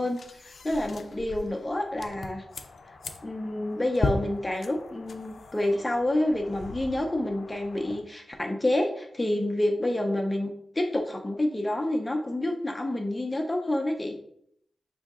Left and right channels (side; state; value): both; normal; correlation 0.96